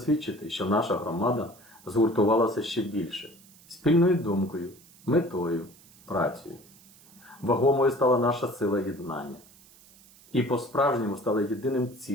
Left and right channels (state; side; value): noise; right; hiss, 25 dB below the sound